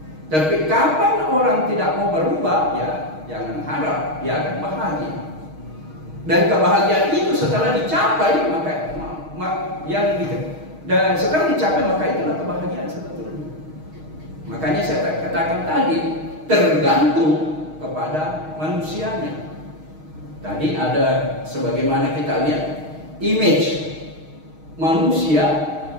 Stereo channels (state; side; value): late; left; 6.4 ms